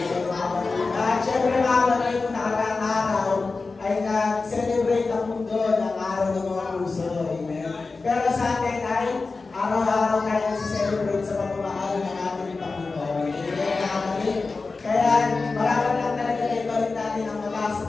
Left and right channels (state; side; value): quieter; right; 4.0 dB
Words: At syempre mga kapatid, kung nakaraang araw ay nag-celebrate ang mundo ng araw ng mga puso. Amen. Pero sa atin ay araw-araw tayo nag-celebrate sa pamamahal ng ating Panginoon. Amen mga kapatid. Kaya maraming lang talaga na ibalik natin ang mataas sa